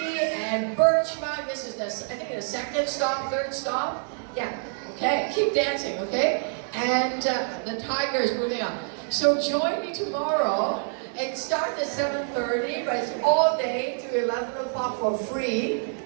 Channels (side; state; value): left; silent; 61 dB below the other